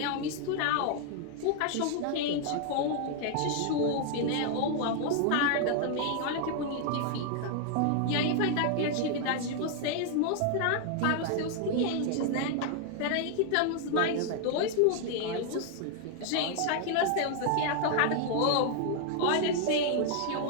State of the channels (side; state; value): both; different; correlation 0.00